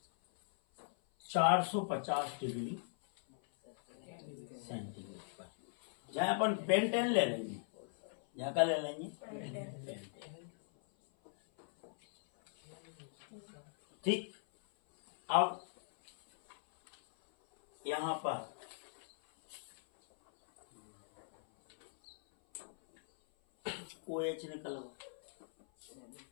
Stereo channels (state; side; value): silent; right; 51 dB below the other